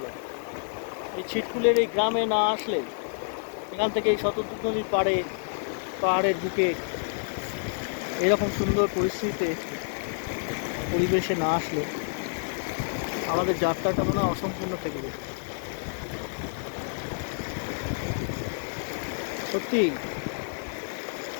এই ছিটকুলের এই গ্রামে না আসলে, এখান থেকে এই শতদ্রু নদীর পাহাড়ের বুকে এরকম সুন্দর পরিস্থিতিতে পরিবেশে না আসলে আমাদের যাত্রাটা মনে হয় অসম্পূর্ণ থেকে যেত। সত্যি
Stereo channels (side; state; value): right; silent; digital silence